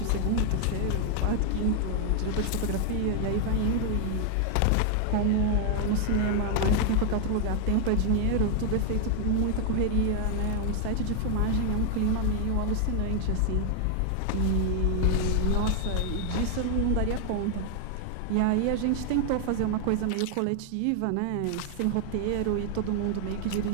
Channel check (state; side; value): different; both; correlation 0.00